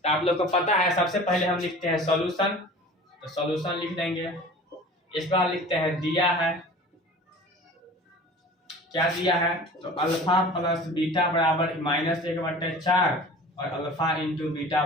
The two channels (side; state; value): both; normal; correlation 0.41